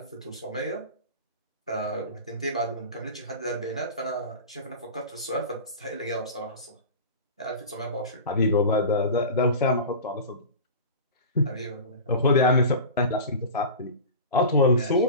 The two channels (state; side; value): inverted; both; correlation -0.32